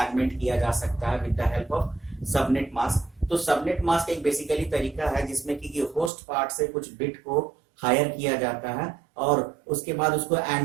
किया जा सकता है with the help of subnet mask. तो सबनेट मास्क एक बेसिकली तरीका है जिसमें कि होस्ट पार्ट से कुछ बिट को हायर किया जाता है और उसके बाद उसको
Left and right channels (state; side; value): drops out; left; at 6.1 s